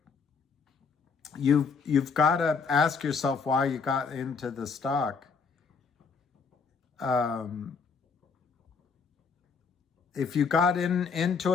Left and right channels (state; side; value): quieter; right; 5.3 dB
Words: you've got to ask yourself why you got into the stock. If you got into